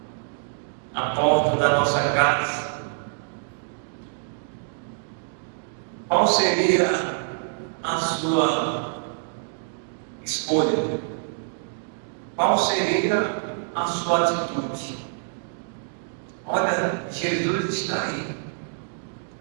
a porta da nossa casa. Qual seria a sua escolha? Qual seria a sua atitude? Olha, Jesus está aí.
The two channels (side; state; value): left; silent; digital silence